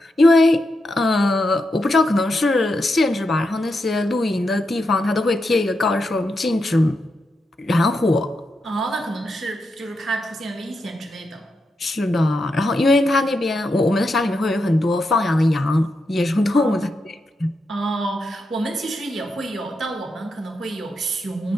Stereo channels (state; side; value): normal; both; correlation 0.85